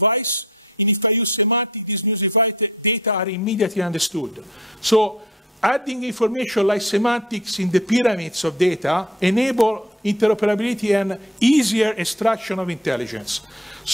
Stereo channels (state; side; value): normal; both; correlation 0.50